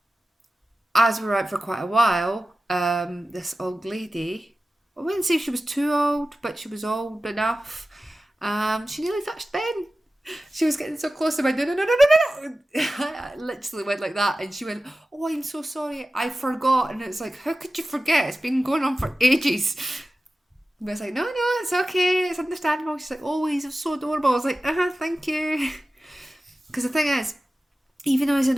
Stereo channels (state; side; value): normal; both; correlation 0.95